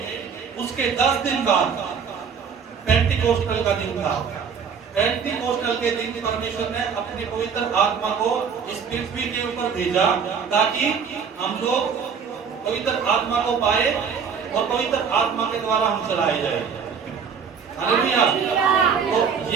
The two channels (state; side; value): quieter; left; 6.5 dB